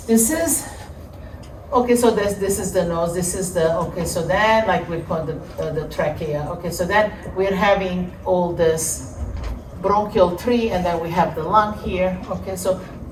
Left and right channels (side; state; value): both; identical; correlation 1.00